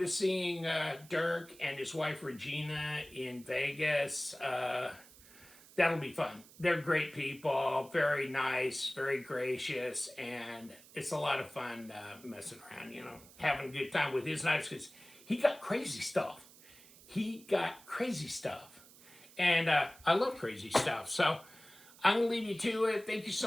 seeing Dirk and his wife Regina in Vegas. That'll be fun. They're great people, very nice, very gracious, and it's a lot of fun messing around, you know, having a good time with his knives, because he got crazy stuff. And I love crazy stuff. So I'm going to leave you to it. Thank you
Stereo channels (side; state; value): right; noise; hiss, 22 dB below the sound